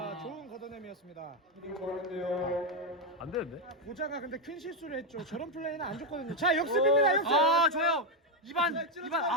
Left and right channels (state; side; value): normal; both; correlation 0.05